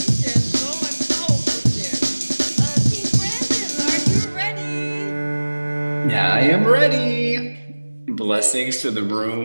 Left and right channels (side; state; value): both; inverted; correlation -1.00